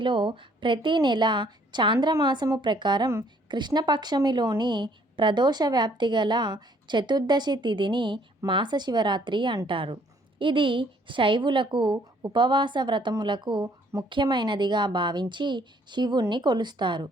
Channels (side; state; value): both; normal; correlation 0.63